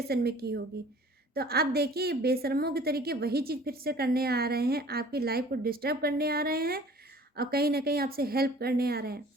में की होगी। तो आप देखिए, बेशर्मों के तरीके वही चीज़ फिर से करने आ रहे हैं, आपकी लाइफ को डिस्टर्ब करने आ रहे हैं और कहीं ना कहीं आपसे हेल्प करने आ रहे हैं,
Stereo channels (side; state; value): both; normal; correlation 0.49